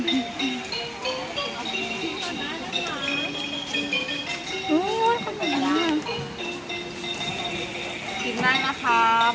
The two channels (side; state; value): both; identical; correlation 1.00